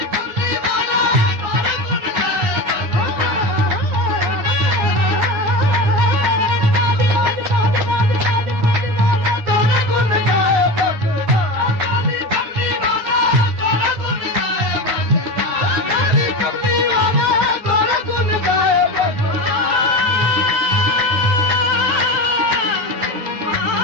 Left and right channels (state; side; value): late; left; 9.8 ms